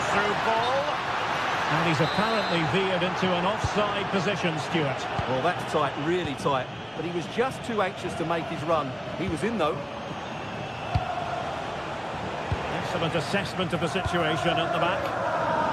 through ball. And he's apparently veered into an offside position, Stuart. Well, that's tight, really tight. But he was just too anxious to make his run. He was in, though. Excellent assessment of the situation at the back.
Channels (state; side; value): identical; both; correlation 1.00